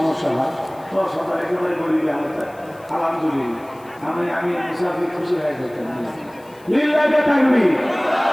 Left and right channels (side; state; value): left; noise; hiss, 28 dB below the sound